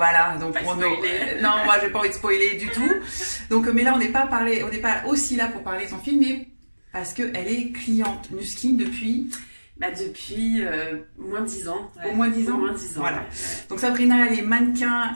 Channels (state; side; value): inverted; both; correlation -1.00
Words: donc non, moi j'ai pas envie de spoiler du tout. Donc, mais là, on n'est pas aussi là pour parler de son film, mais parce qu'elle est cliente Nuskin depuis. Depuis moins de 10 ans. Ouais. Au moins 10 ans. Au moins 10 ans. Voilà. Ouais. Donc Sabrina, elle est